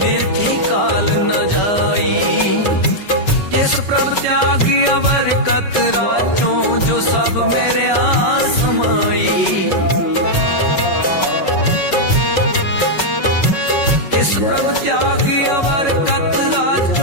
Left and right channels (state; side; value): late; right; 5.3 ms